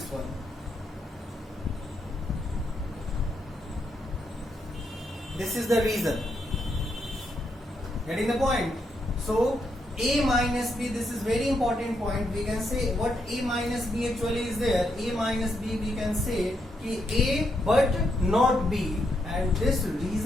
one. This is the reason. Getting the point? So A minus B, this is very important point. We can say what A minus B actually is there. A minus B we can say A but not B, and this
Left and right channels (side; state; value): both; normal; correlation 0.79